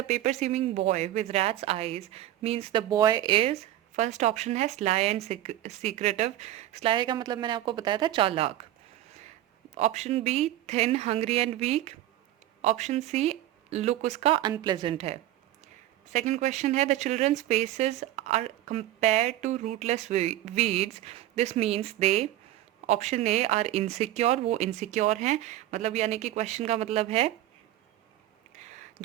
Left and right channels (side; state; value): left; quieter; 13.9 dB